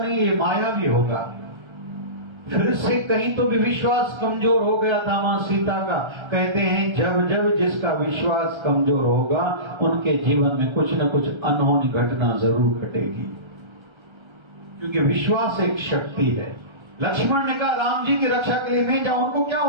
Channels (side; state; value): left; late; 1.3 ms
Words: ये मायावी होगा। फिर से कहीं तो भी विश्वास कमजोर हो गया था मां सीता का। कहते हैं जब जब जिसका विश्वास कमजोर होगा, उनके जीवन में कुछ न कुछ अनहोनी घटना जरूर घटेगी, क्योंकि विश्वास एक शक्ति है। लक्ष्मण ने कहा राम जी की रक्षा के लिए नहीं जाऊं, उनको क्या